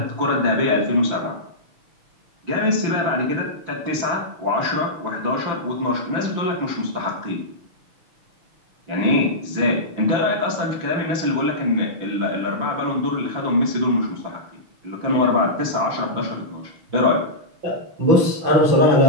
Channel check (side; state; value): left; late; 5.9 ms